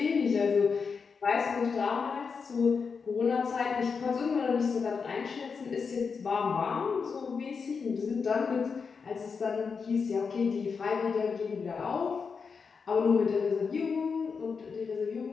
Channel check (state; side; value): quieter; right; 5.5 dB